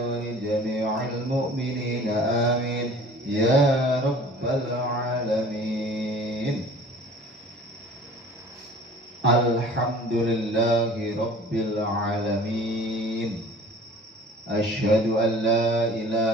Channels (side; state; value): both; normal; correlation 0.46